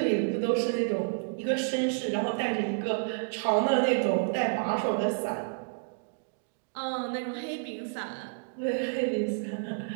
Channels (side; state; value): left; silent; digital silence